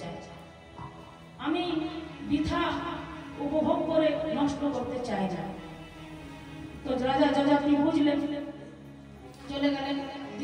আমি বৃথা উপভোগ করে নষ্ট করতে চায় না। তো রাজা যযাতি বুঝলেন, চলে গেলেন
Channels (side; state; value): both; identical; correlation 1.00